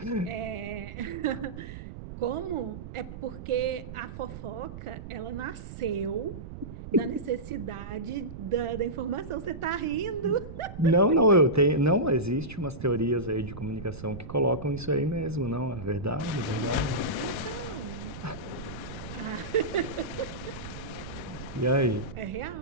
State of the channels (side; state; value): right; noise; rumble, 11 dB below the sound